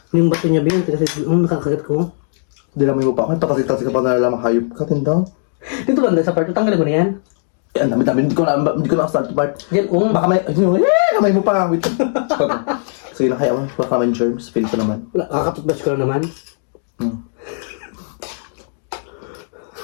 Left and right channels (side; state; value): right; silent; digital silence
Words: Yung bato niya B. Ang tigas kasi. Nakakagat ko. Hindi namin mo pa ako. Patasik-tasik ka pa nalalang hayop ka, tindaw. Dito ba sa part? Tanggalin mo na yan. Eh, ang dami-dami. Hindi ko na start part. Yan. Baka may, kamay mo pa. Wait. Sige na, kaya mo. Baka may germs. Feel ko naman. Wala. Kakatutbash ko lang naman.